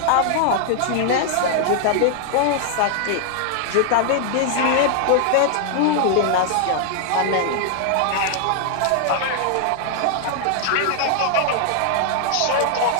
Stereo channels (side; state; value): both; different; correlation 0.00